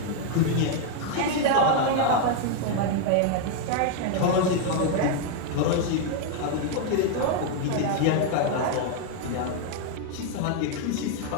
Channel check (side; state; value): both; different; correlation 0.00